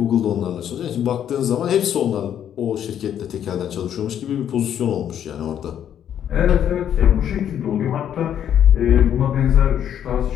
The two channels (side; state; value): right; quieter; 9.7 dB